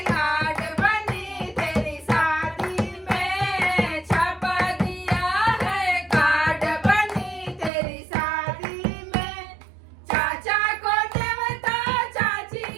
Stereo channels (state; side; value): drops out; left; at 7.7 s